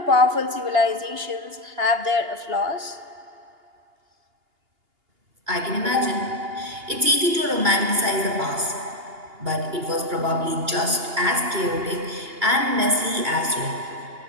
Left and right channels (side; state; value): left; late; 2.8 ms